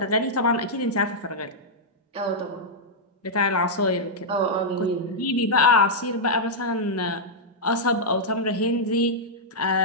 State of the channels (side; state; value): both; normal; correlation -0.07